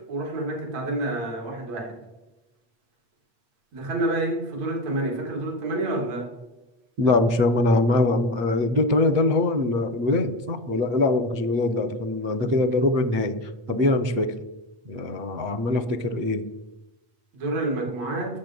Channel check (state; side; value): late; left; 8.5 ms